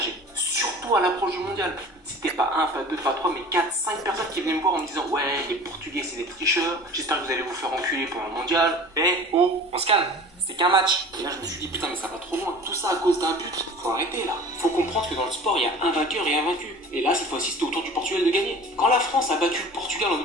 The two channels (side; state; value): both; normal; correlation 0.42